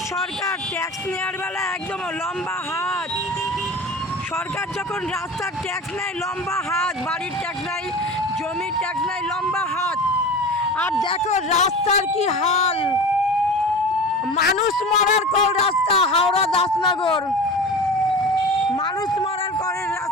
সরকার ট্যাক্স নেওয়ার বেলা একদম লম্বা হাত। সরকার যখন রাস্তার ট্যাক্স নেয় লম্বা হাত, বাড়ির ট্যাক্স নেয়, জমির ট্যাক্স নেয় লম্বা হাত। আর দেখো রাস্তার কি হাল, মানুষ মরার কল রাস্তা। হাওড়া দাসনগর মানুষ মরার কলের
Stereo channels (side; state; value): both; normal; correlation 0.33